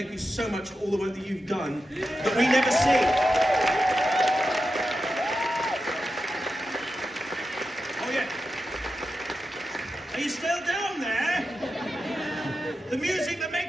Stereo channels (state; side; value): normal; both; correlation 0.90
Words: you so much for all the work that you've done that we never see. Are you still down there? The music that